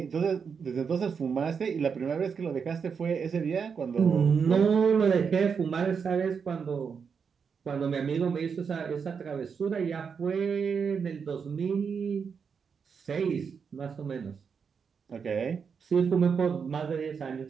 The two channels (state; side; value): quieter; left; 6.2 dB